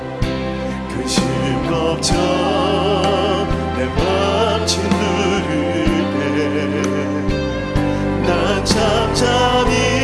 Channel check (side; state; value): both; identical; correlation 1.00